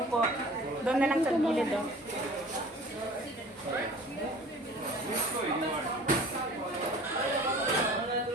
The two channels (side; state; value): both; normal; correlation 0.45